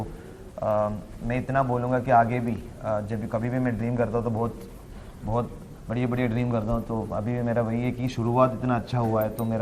मैं इतना बोलूँगा कि आगे भी जब भी कभी भी मैं ड्रीम करता हूँ तो बहुत बढ़िया ड्रीम करता हूँ। तो अभी भी मेरा वही है कि शुरुआत इतना अच्छा हुआ है, तो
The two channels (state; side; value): identical; both; correlation 1.00